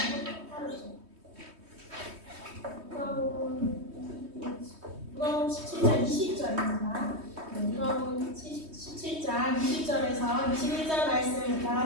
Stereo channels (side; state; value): left; late; 3.2 ms